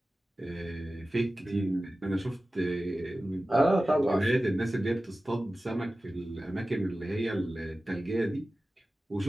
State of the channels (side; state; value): both; normal; correlation 0.95